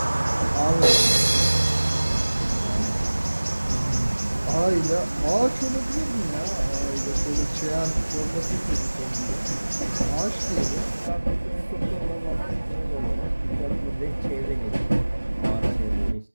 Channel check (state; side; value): inverted; both; correlation -1.00